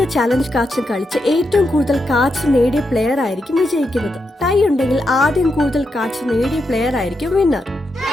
ചാലഞ്ച് കാർഡ്സും കളിച്ച് ഏറ്റവും കൂടുതൽ കാർഡ്സ് നേടിയ പ്ലെയർ ആയിരിക്കും വിജയിക്കുന്നത്. ടൈ ഉണ്ടെങ്കിൽ ആദ്യം കൂടുതൽ കാർഡ്സ് നേടിയ പ്ലെയർ ആയിരിക്കും വിന്നർ.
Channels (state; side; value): normal; both; correlation 0.84